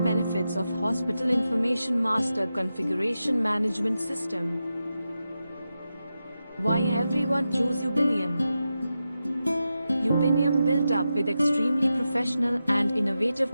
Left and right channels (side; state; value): both; inverted; correlation -0.90